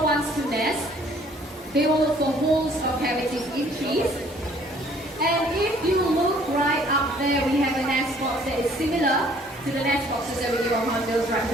wants to nest, they will look for holes or cavities in trees. And if you look right up there, we have a nest box that is similar to the nest boxes that we give our hornbills right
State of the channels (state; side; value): normal; both; correlation 0.59